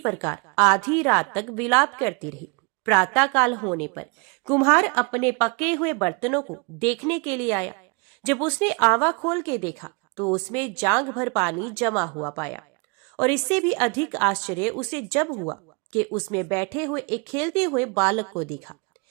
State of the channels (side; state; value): left; quieter; 32.1 dB